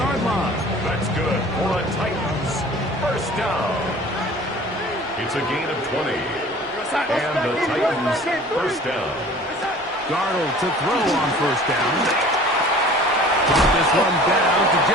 line. That's good for a Titans first down. It's a gain of 20. And the Titans first down. Darnold to throw on first down. Brought this one down to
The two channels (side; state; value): both; normal; correlation 0.46